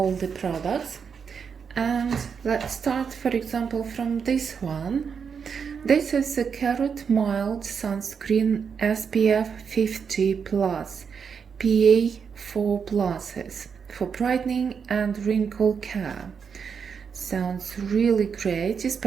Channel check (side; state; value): left; quieter; 6.5 dB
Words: the products, and let's start, for example, from this one. This is a Carrot Mild Sunscreen SPF 50+, PA4+, for brightening and wrinkle care. Sounds really great,